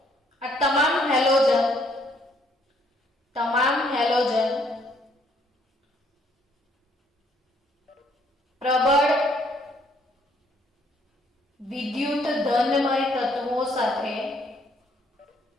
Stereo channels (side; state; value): both; normal; correlation 0.66